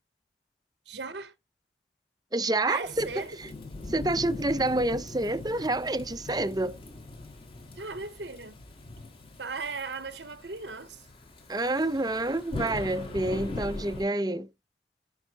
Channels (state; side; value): normal; both; correlation 0.53